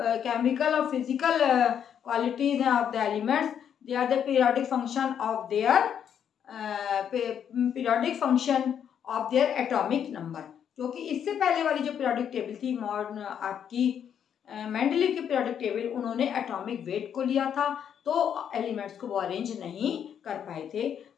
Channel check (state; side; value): quieter; right; 8.6 dB